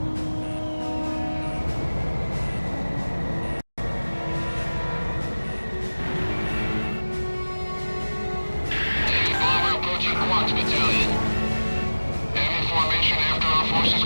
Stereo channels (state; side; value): inverted; both; correlation -1.00